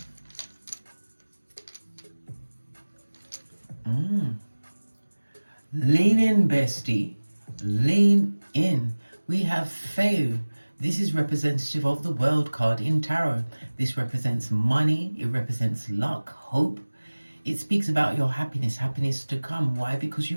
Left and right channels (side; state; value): both; inverted; correlation -1.00